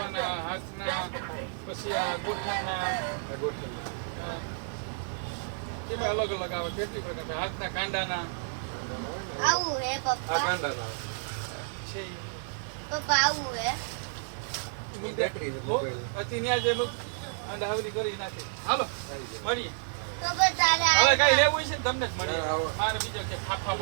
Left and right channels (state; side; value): silent; left; 57 dB below the other